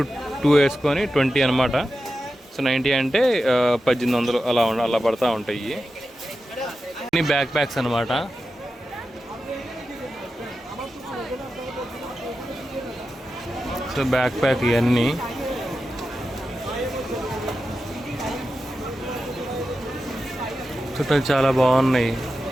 2 వేసుకొని 20 అనమాట. సో 90 అంటే 1800 అలా పడతా ఉంటాయి. అన్ని బ్యాక్ ప్యాక్స్ అనమాట. సో బ్యాక్ ప్యాక్ ఇవన్నీ చుట్టాలు చాలా బాగున్నాయి.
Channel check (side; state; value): both; normal; correlation 0.91